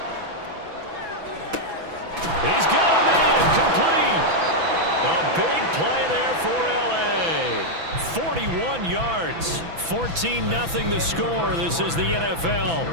He's got a man complete. A big play there for L.A. 41 yards. 14-0 the score. This is the NFL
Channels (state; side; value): late; left; 6.0 ms